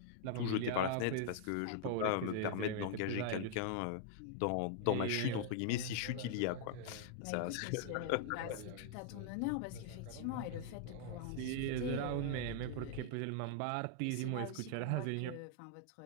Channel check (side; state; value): both; different; correlation -0.01